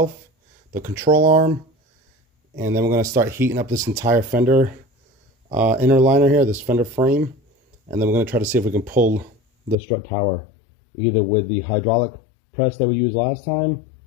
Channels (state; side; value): drops out; right; at 9.8 s